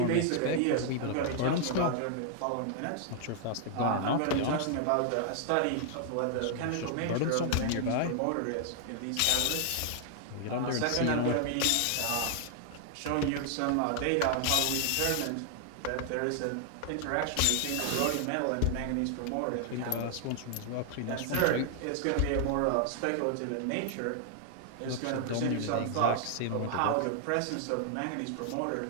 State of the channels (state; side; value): different; both; correlation 0.00